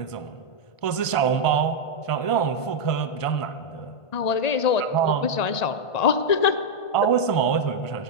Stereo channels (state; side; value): late; right; 1.5 ms